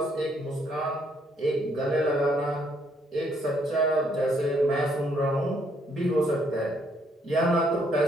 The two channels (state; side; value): normal; both; correlation 0.70